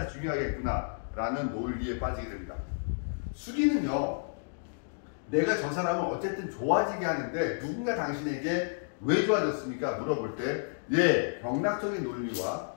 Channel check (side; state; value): right; silent; digital silence